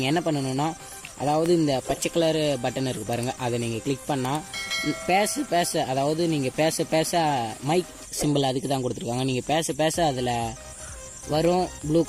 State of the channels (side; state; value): both; identical; correlation 1.00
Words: என்ன பண்ணணுன்னா, அதாவது இந்த பச்சை கலர் பட்டன் இருக்குது பாருங்கள், அதை நீங்கள் கிளிக் பண்ணால் பேச அதாவது நீங்கள் பேச மைக் சிம்பிள் அதுக்கு தான் கொடுத்துருக்காங்க. நீங்கள் பேச அதில் வரும் ப்ளூ